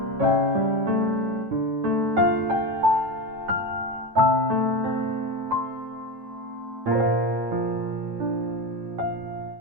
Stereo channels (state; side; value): late; left; 8.9 ms